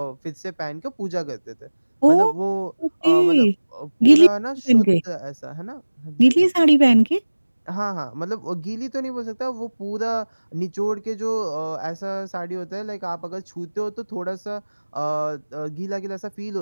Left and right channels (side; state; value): both; inverted; correlation -1.00